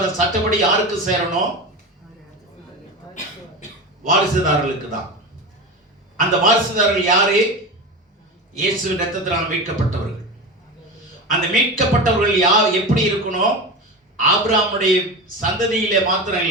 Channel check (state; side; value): normal; both; correlation 0.25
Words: சட்டப்படி யாருக்கு சேரணும்? வாரிசுதாரர்களுக்கு தான். அந்த வாரிசுதாரர்கள் யாரு? இயேசுவின் இரத்தத்தினால் மீட்கப்பட்டவர்கள். அந்த மீட்கப்பட்டவர்கள் யார் எப்படி இருக்கணும்? ஆபிரகாமுடைய சந்ததியிலே மாத்திரம்